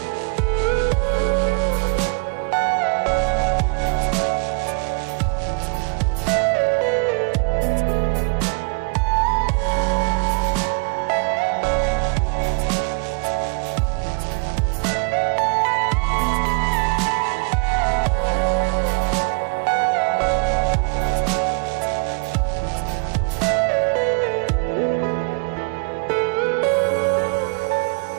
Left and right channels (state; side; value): quieter; left; 36.3 dB